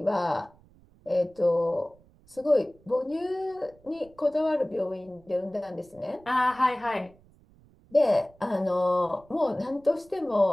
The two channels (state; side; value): noise; right; rumble, 28 dB below the sound